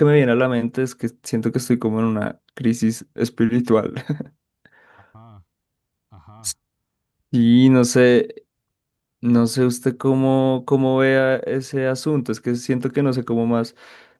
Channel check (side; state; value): both; identical; correlation 1.00